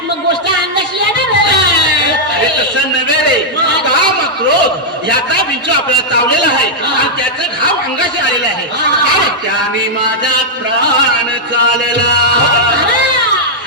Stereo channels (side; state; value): both; normal; correlation -0.05